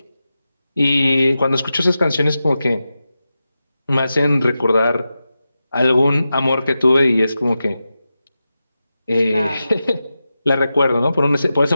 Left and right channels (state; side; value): inverted; both; correlation -0.92